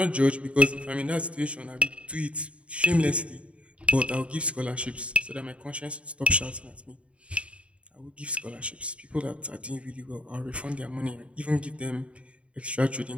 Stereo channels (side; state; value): left; late; 0.062 ms